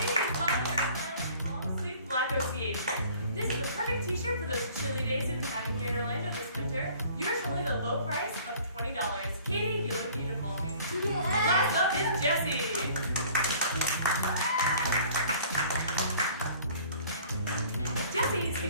Long-sleeve black OCA shirt. This is a perfect t-shirt for those chilly days we've been having here in Orlando this winter. Yours for only the low price of $20. Katie, you look beautiful. Last up is Jessie. Jesse's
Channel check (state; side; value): inverted; both; correlation -0.51